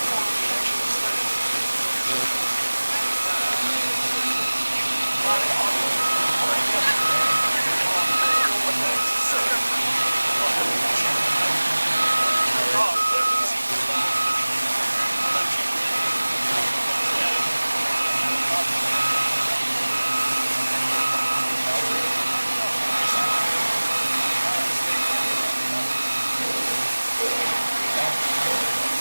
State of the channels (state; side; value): inverted; both; correlation -1.00